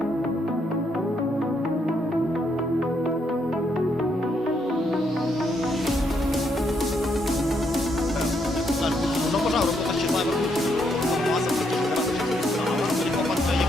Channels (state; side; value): normal; both; correlation 0.75